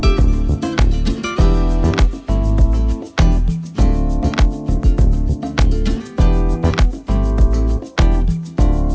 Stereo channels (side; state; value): both; identical; correlation 1.00